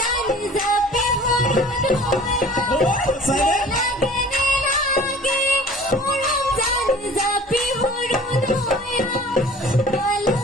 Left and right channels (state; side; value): normal; both; correlation 0.46